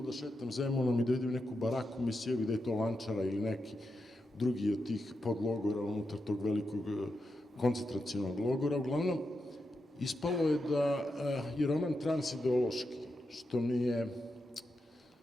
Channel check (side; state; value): both; normal; correlation 0.87